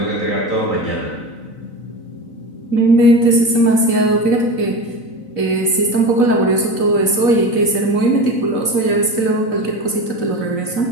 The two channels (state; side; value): late; right; 4.0 ms